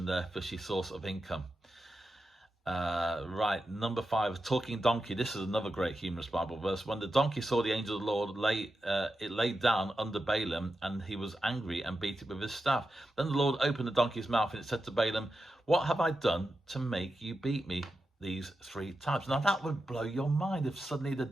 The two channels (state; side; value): normal; both; correlation 0.89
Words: their fishy source of income. Right, number 5, talking donkey. This is another great humorous Bible verse. When the donkey saw the angel of the Lord, it laid down under Balaam, and he was angry and beat it with his staff. Then the Lord opened the donkey's mouth, and it said to Balaam, "What have I done to make you beat me these 3 times?" Now that would blow your mind if suddenly the